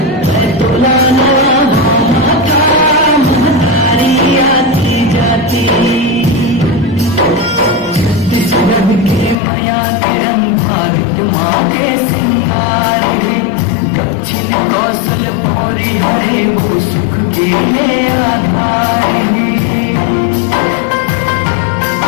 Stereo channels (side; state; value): right; drops out; at 9.3 s